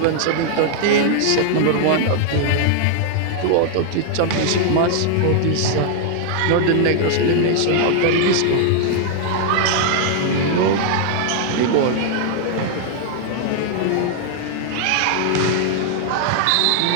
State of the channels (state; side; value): different; both; correlation 0.00